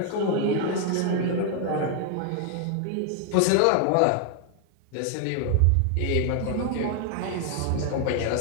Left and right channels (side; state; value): both; different; correlation 0.00